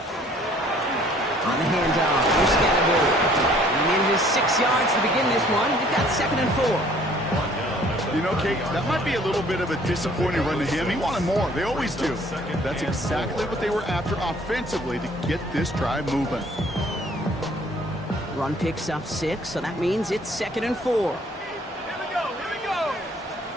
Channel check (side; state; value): both; normal; correlation 0.57